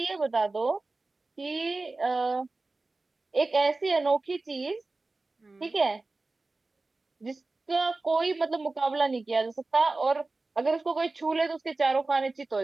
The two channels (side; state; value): left; quieter; 3.4 dB